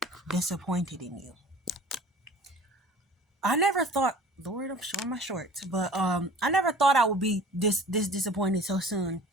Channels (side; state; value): both; normal; correlation 0.44